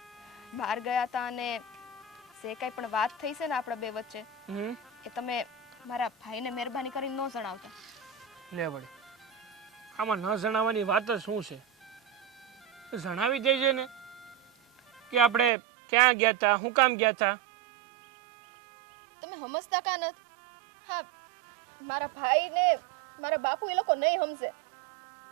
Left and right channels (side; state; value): left; drops out; at 15.5 s